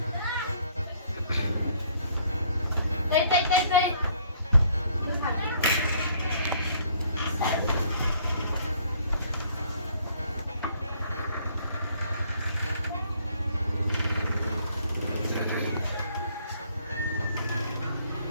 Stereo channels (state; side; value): inverted; both; correlation -0.63